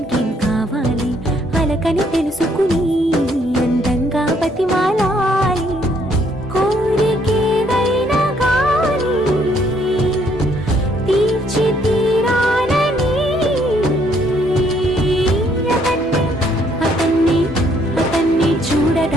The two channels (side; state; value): both; normal; correlation 0.67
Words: కావాలి. అలకని తెలుసుకుని అందంగా బతిమాలాలి. కోరికేదైనా గాని తీర్చి తీరాలని అతన్ని